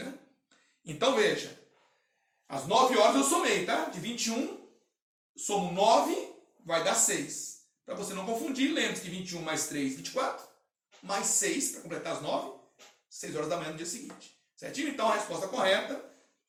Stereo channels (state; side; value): identical; both; correlation 1.00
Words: Então, veja, às 9 horas eu somei, tá? De 21, somo 9, vai dar 6. Para você não confundir, lembre-se que 21 mais 3, 24, mais 6, para completar as 9, 6 horas da manhã do dia seguinte. Certinho? Então, a resposta correta